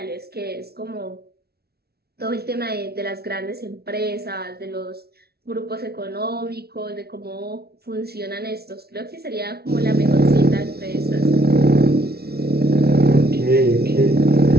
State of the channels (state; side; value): late; left; 0.46 ms